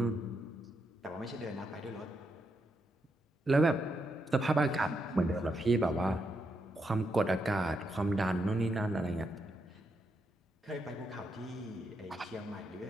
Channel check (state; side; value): normal; both; correlation 0.81